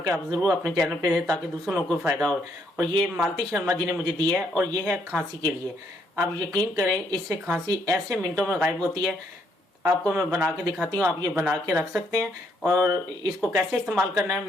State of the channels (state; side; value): normal; both; correlation 0.72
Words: आप ज़रूर अपने चैनल पे दें ताकि दूसरे लोगों को फ़ायदा हो। और ये मालती शर्मा जी ने मुझे दिया है और ये है खांसी के लिए। आप यकीन करें, इससे खांसी ऐसे मिनटों में गायब होती है। आपको मैं बना के दिखाती हूँ, आप ये बना के रख सकते हैं। और इसको कैसे इस्तेमाल करना है